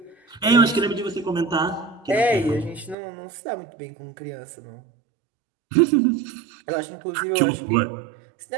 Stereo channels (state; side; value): drops out; left; at 3.0 s